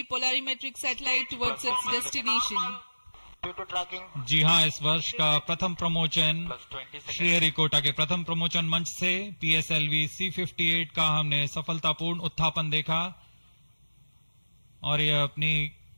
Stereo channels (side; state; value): both; inverted; correlation -1.00